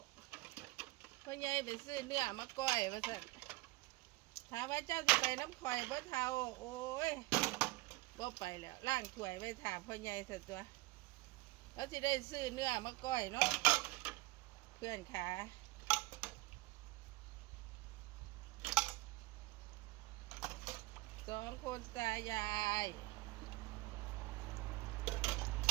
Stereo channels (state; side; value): quieter; left; 21.4 dB